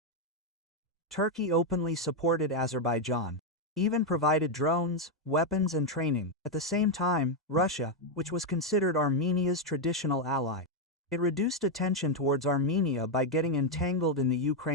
Turkey openly supported Azerbaijan, even provided drones, weapons and training. At the same time, Russia, which was considered Armenia's traditional ally, it reduced attention towards Armenia by getting entangled in the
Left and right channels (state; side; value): normal; both; correlation 0.02